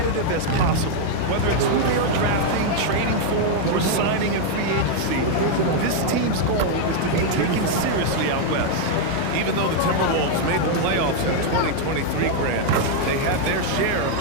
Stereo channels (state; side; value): different; both; correlation 0.00